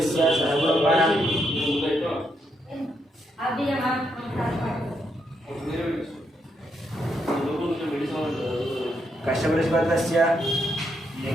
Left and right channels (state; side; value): normal; both; correlation 0.79